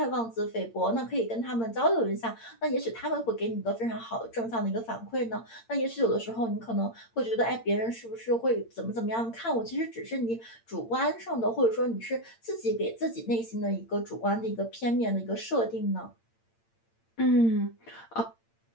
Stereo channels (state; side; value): late; right; 8.8 ms